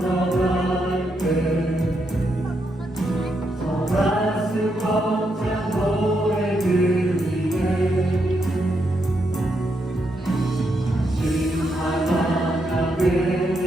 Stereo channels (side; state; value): both; normal; correlation 0.80